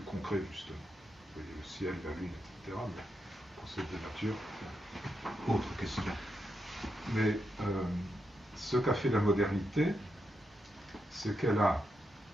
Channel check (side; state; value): both; normal; correlation 0.84